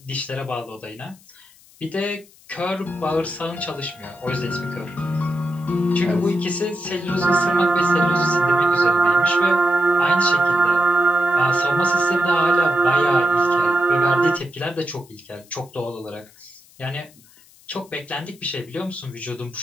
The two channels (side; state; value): left; noise; hiss, 27 dB below the sound